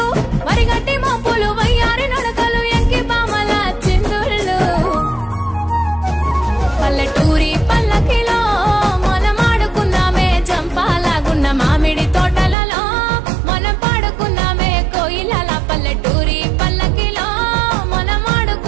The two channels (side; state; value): left; drops out; at 12.6 s